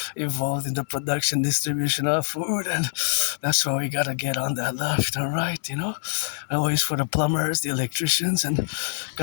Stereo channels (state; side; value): silent; right; digital silence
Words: involved in the production, distribution of food. and that's why we gotta get on that left and right, Always for the plumbers, the electricians, and